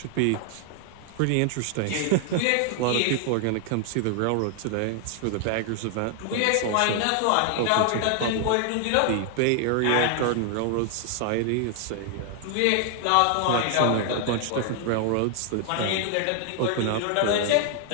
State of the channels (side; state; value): both; different; correlation 0.00